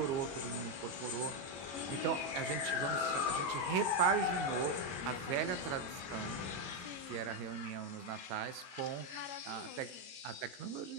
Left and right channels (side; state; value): left; late; 22 ms